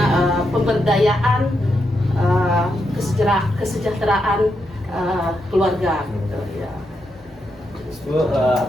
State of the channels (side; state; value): both; normal; correlation 0.83